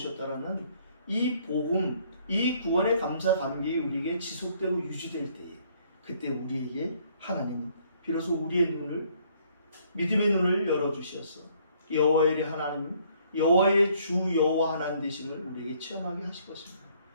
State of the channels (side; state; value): both; inverted; correlation -0.64